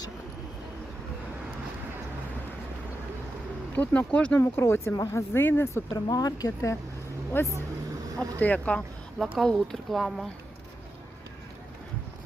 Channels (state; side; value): normal; both; correlation 0.89